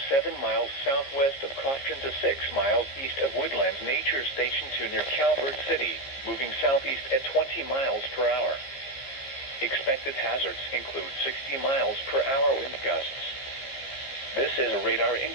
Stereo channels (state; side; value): late; right; 15 ms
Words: 7 miles southwest of Crofton to 6 miles east of Woodlands Nature Station to near Calvert City, moving southeast at 20 miles per hour. Expected hazards include 60 miles per hour wind gusts. This is a